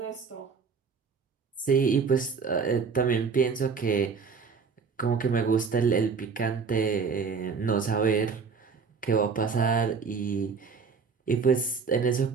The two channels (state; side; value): quieter; left; 5.4 dB